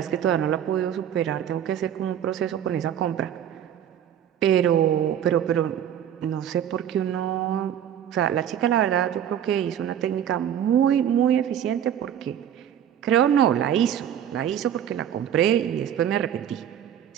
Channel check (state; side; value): quieter; left; 9.8 dB